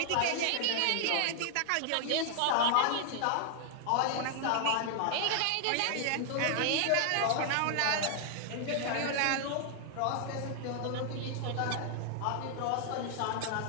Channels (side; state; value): both; different; correlation 0.00